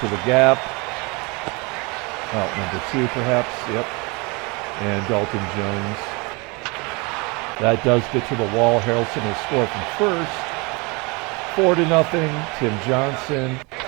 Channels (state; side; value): quieter; left; 28.3 dB